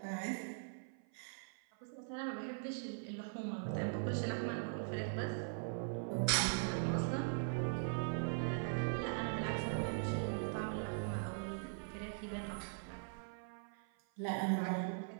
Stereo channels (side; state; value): left; silent; 50 dB below the other